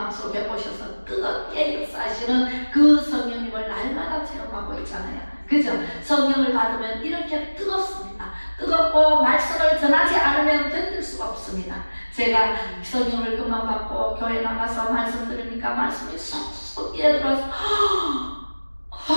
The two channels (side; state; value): both; inverted; correlation -1.00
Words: 오셔서 뜨겁게 역사하시는 그 성령님을 날마다 체험하고 있잖아요. 그죠? 성령을 받으면 이렇게 뜨겁습니다. 뜨겁고 말씀을 전하지 않으면 견딜 수가 없습니다. 제가 성령을 그만 받고 교회 나가서 말씀 들으니까 말씀이 쏙쏙 끼어들어서